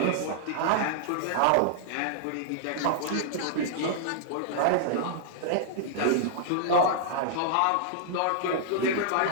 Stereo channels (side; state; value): both; different; correlation -0.01